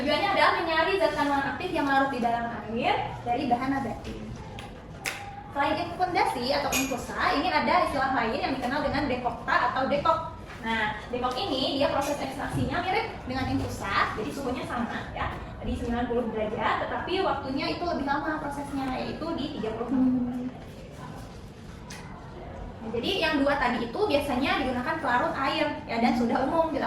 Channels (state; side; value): identical; both; correlation 1.00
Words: adalah menyari zat kandungan aktif yang larut di dalam air dari bahan nabati. Selain infundasi atau infusa, ini ada istilah lain yang dikenal dengan dekokta atau dekok. Nah, dekok ini dia proses ekstraksinya mirip dengan infusa, jadi suhunya sama ya, di 90 derajat, tetapi waktunya itu lebih lama prosesnya, yaitu di 30 menit. Nah, jadi yang dua tadi itu biasanya digunakan pelarut air ya, dan sudah umum